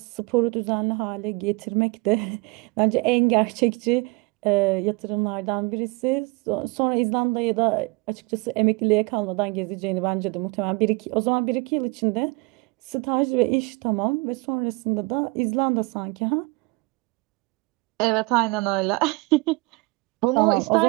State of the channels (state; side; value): quieter; left; 25.5 dB